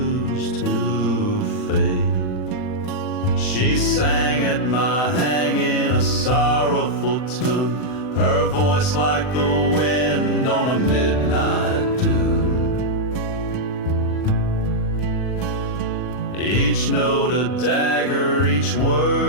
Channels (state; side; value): late; right; 40 ms